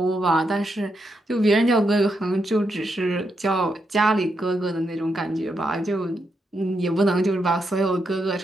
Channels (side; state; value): both; normal; correlation 0.82